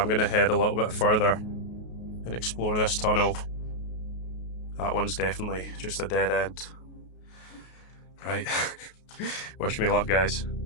gonna head a little bit further and explore this tunnel. That one's definitely just a dead end. Right, wish me luck, guys.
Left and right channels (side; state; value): right; late; 33 ms